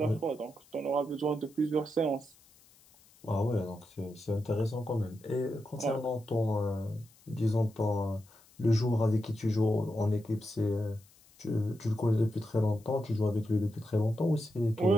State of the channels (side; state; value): left; noise; hiss, 28 dB below the sound